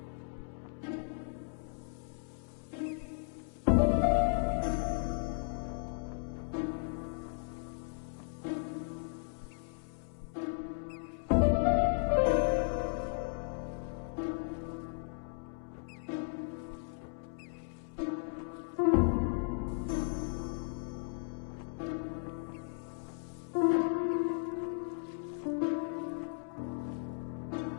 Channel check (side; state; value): right; silent; digital silence